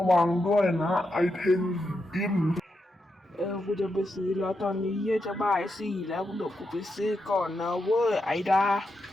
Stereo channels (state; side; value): normal; both; correlation 0.85